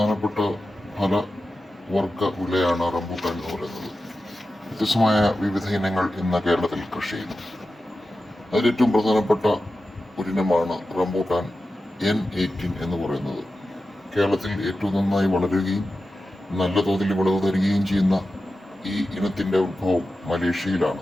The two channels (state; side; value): normal; both; correlation 0.93